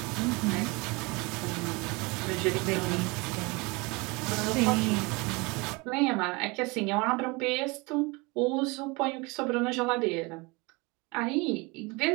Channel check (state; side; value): quieter; left; 26.3 dB